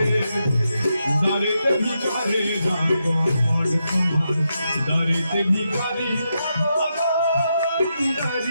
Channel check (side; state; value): both; inverted; correlation -0.84